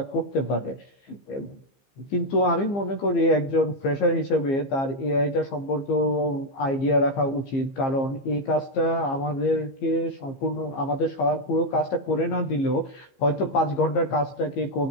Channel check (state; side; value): late; right; 15 ms